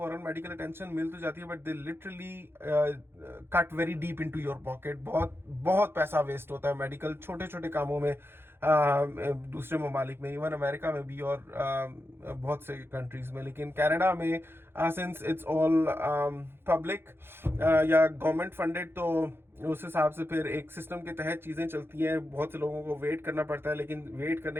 मेडिकल अटेंशन मिल तो जाती है, but they literally cut very deep into your pocket. बहुत बहुत पैसा वेस्ट होता है मेडिकल छोटे छोटे कामों में, दूसरे ममालिक में, इवन अमेरिका में भी, और बहुत से कंट्रीज में। लेकिन कनाडा में सिंस इट्स ऑल पब्लिक या गवर्नमेंट फंडेड, तो उस हिसाब से फिर एक सिस्टम के तहत चीज़ें चलती हैं। बहुत से लोगों को वेट करना पड़ता है, लेकिन वेट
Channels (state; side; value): late; left; 0.11 ms